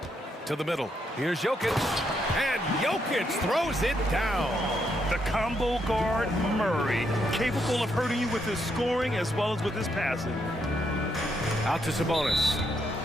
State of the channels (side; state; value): both; normal; correlation 0.77